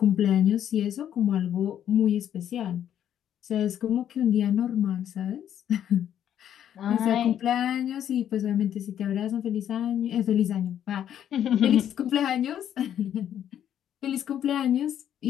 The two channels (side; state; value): right; quieter; 10.1 dB